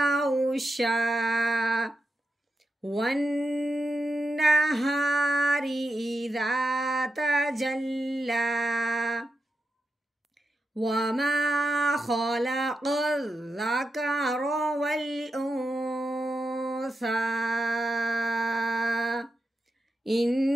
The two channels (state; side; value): normal; both; correlation 0.88